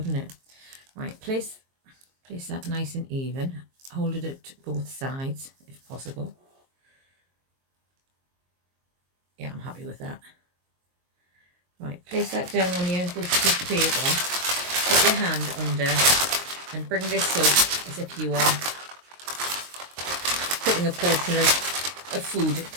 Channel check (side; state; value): left; late; 22 ms